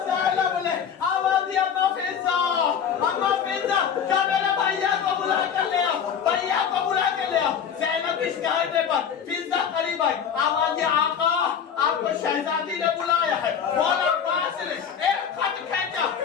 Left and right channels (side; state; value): right; quieter; 7.6 dB